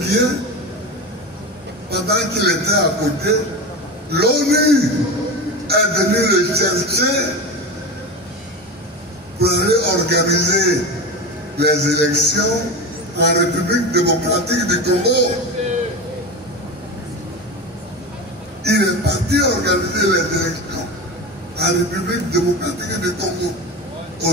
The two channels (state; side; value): normal; both; correlation 0.24